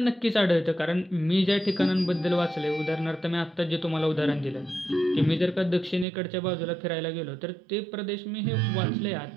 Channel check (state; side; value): drops out; left; at 6.1 s